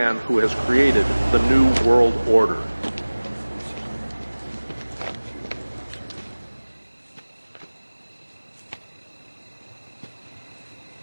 who has created the New World Order.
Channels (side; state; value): both; inverted; correlation -1.00